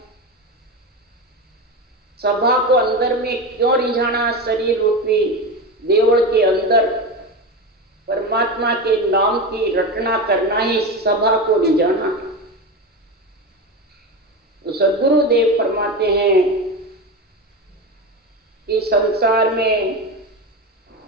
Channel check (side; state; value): both; normal; correlation 0.21